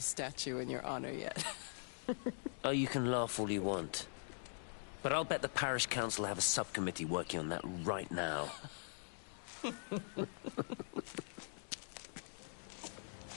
statue in your honor yet. Oh, you can laugh all you want. But I'll bet the parish council have a subcommittee working on that right now.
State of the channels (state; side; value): silent; right; digital silence